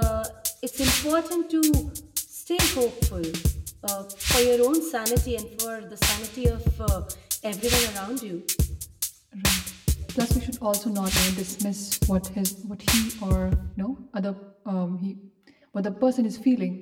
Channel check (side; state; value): both; identical; correlation 1.00